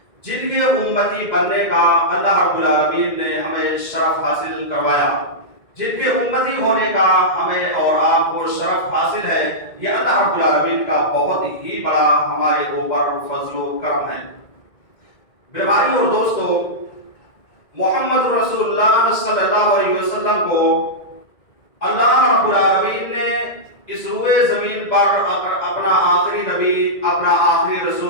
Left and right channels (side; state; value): right; late; 1.9 ms